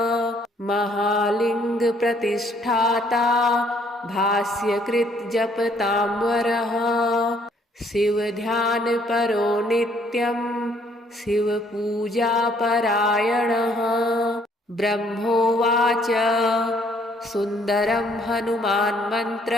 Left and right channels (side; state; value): both; normal; correlation 0.64